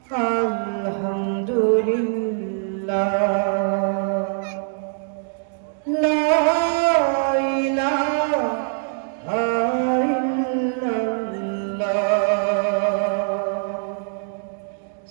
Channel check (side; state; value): left; silent; digital silence